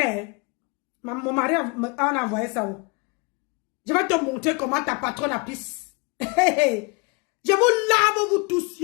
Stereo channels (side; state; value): right; quieter; 30.4 dB